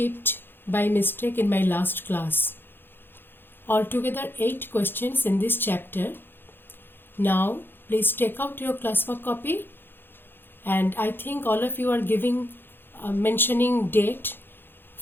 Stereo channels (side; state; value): right; late; 0.10 ms